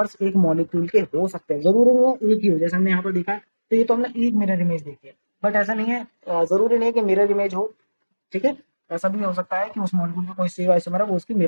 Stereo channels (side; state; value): both; inverted; correlation -1.00